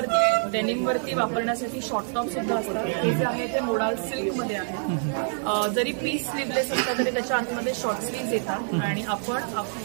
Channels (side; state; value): left; silent; digital silence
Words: डेनिमवरती वापरण्यासाठी शॉर्ट टॉप सुद्धा असतात. हे जे आहे ते मोडाल सिल्कमध्ये आहे. जरी पीस स्लीवलेस असतात तरी त्याच्या आतमध्ये शॉर्ट स्लीव्ज येतात आणि आपण